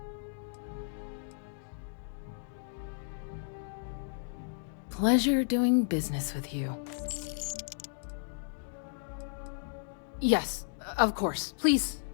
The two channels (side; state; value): right; silent; digital silence